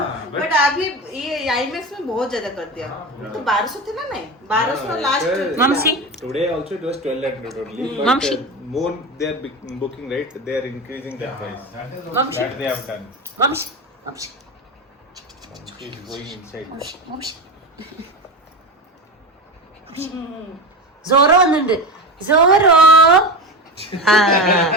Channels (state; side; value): normal; both; correlation 0.23